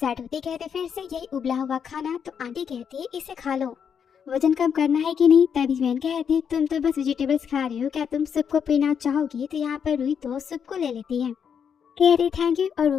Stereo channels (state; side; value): quieter; right; 7.4 dB